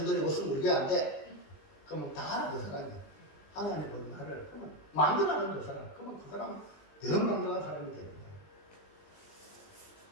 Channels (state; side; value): late; right; 20 ms